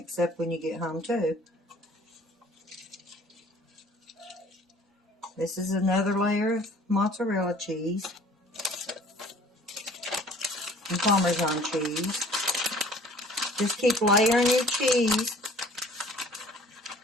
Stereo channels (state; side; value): normal; both; correlation 0.52